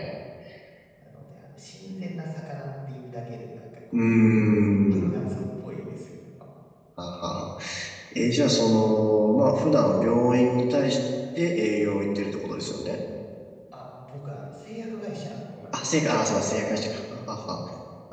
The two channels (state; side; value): identical; both; correlation 1.00